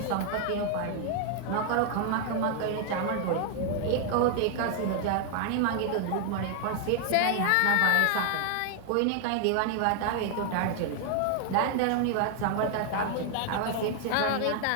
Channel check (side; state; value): both; different; correlation 0.00